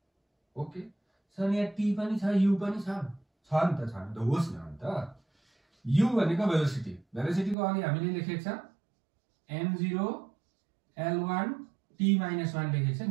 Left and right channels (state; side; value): drops out; left; at 7.6 s